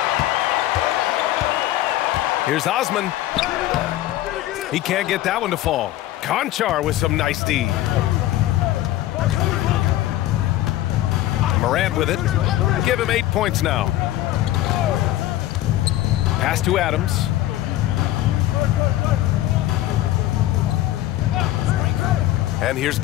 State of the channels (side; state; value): right; quieter; 14.6 dB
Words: Here's Osman. He can't get that one to fall. Conchar with some nice D. Morant with it. Give him 8 points now. Pass to Adams. And here's